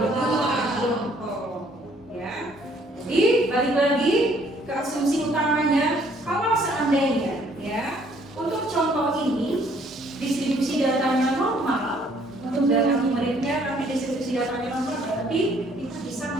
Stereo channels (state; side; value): normal; both; correlation 0.63